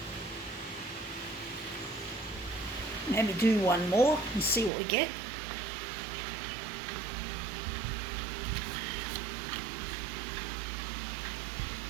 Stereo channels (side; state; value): left; drops out; at 4.7 s